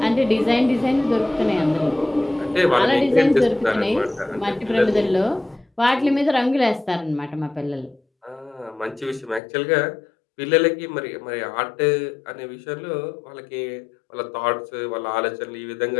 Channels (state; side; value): drops out; right; at 9.4 s